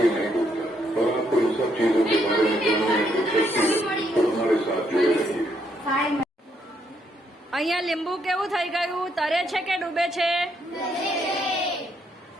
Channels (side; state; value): both; normal; correlation 0.74